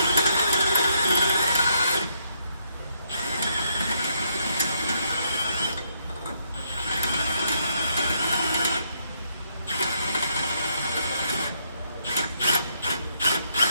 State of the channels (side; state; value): both; inverted; correlation -0.74